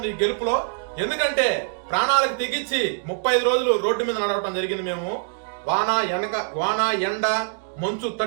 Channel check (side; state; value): left; silent; digital silence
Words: ఈ గెలుపులో. ఎందుకంటే ప్రాణాలకు తెగించి 35 రోజులు రోడ్డు మీద నడవటం జరిగింది. మేము వాన ఎండ మంచు